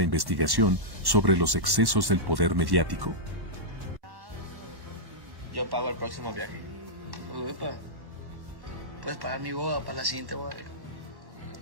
investigación sobre los excesos del poder mediático? Yo pago el próximo viaje. Uepa. Puedes pagar mi boda para la siguiente boda.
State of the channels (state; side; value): late; left; 1.1 ms